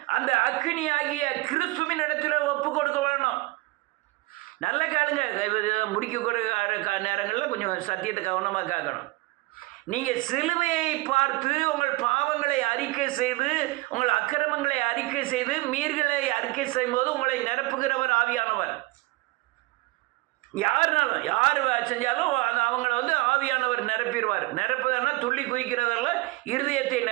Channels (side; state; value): left; quieter; 22.1 dB